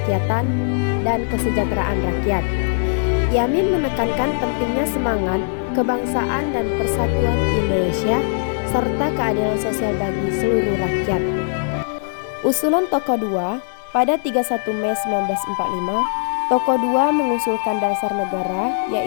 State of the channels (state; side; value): silent; right; digital silence